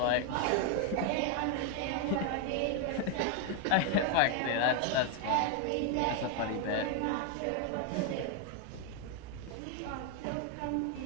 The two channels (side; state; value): both; different; correlation 0.01